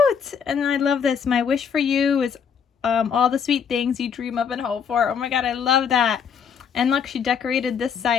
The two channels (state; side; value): quieter; right; 7.0 dB